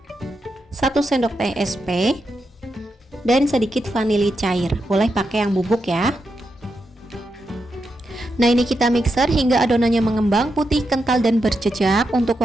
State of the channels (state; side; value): normal; both; correlation 0.85